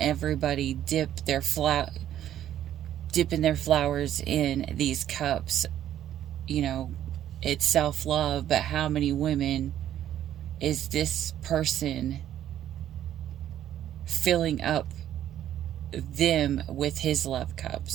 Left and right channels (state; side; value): quieter; left; 11.4 dB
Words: dipping their flowers in these cups. It's self-love, but how many women is this person filling up them with his love